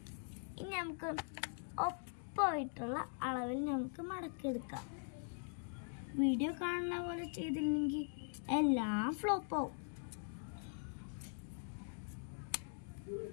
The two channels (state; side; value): silent; right; digital silence